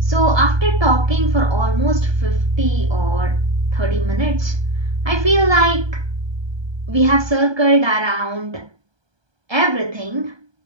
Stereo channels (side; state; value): left; late; 1.2 ms